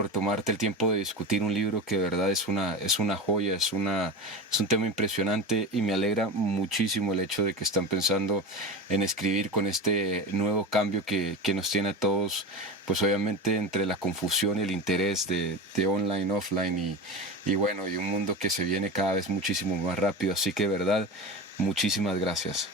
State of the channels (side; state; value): both; normal; correlation 0.25